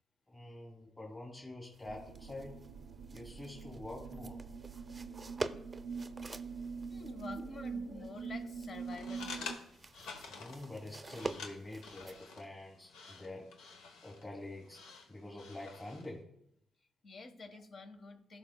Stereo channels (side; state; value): both; normal; correlation 0.84